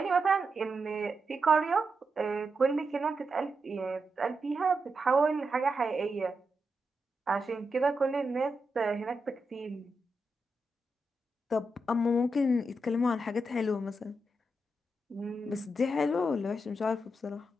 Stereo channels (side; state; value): both; normal; correlation 0.85